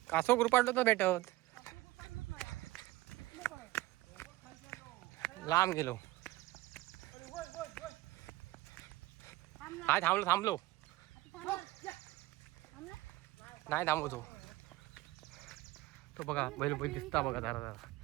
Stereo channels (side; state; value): left; quieter; 18.1 dB